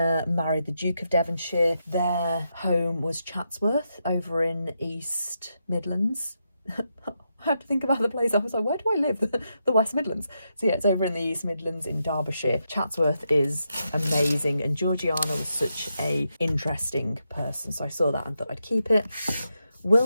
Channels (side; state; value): both; inverted; correlation -0.84